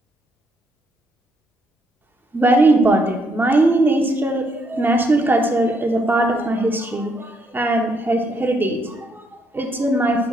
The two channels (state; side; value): normal; both; correlation 0.74